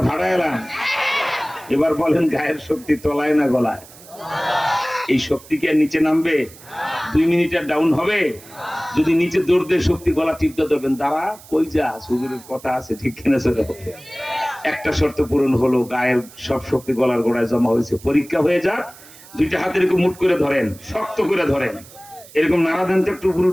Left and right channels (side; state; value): right; noise; hiss, 21 dB below the sound